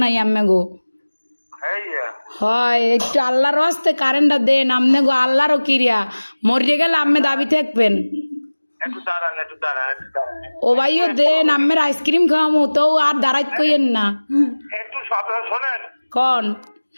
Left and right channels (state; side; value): inverted; both; correlation -1.00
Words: নাই আম্মে গো হ্যাঁ হয় একটু আল্লাহর হস্তে কারেন্টটা দেন আমনে গো আল্লাহরও কিরিয়া মরিয়ে গেলে আম্মে দাবি থাকবেন একটু দাঁড়ান ও ভাইও দেন আম্মের আইসক্রিম খাওয়ামো তো আর দাঁড়াইত কইেন না একটু কথা শোনেন কন